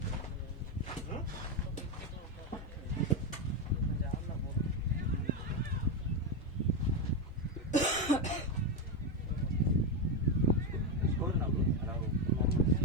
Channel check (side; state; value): both; normal; correlation 0.09